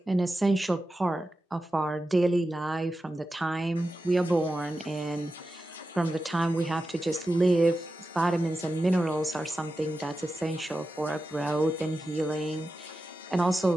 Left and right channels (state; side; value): normal; both; correlation 0.92